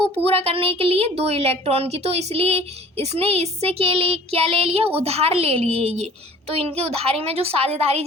पूरा करने के लिए, 2 इलेक्ट्रॉन की। तो इसलिए इसने इससे के लिए क्या ले लिया, उधार ले लिए ये। तो इनकी उधारी में जो साझेदारी,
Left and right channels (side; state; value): both; normal; correlation 0.49